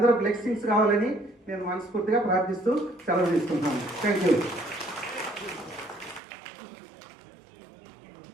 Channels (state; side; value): drops out; left; at 6.2 s